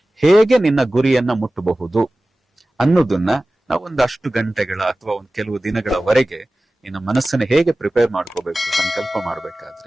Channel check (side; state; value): both; normal; correlation 0.97